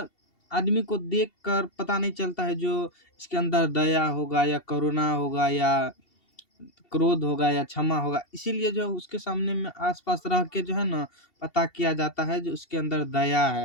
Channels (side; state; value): right; late; 2.7 ms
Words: आदमी को देख कर पता नहीं चलता है जो इसके अंदर दया होगा या करुणा होगा या क्रोध होगा या क्षमा होगा, इसीलिए जो है उसके सामने में आस-पास रह के जो है ना पता किया जाता है जो उसके अंदर दया